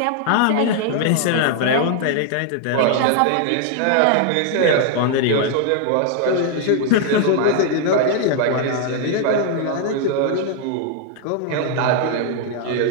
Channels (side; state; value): both; different; correlation 0.00